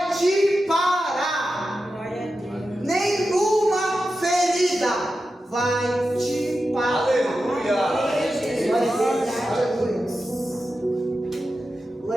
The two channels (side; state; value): both; normal; correlation 0.91